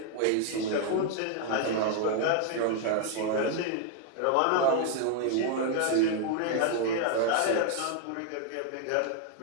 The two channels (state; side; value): different; both; correlation 0.00